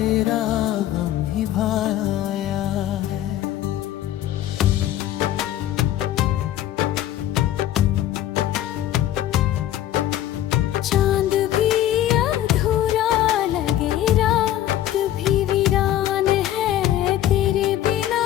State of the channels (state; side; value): quieter; right; 12.7 dB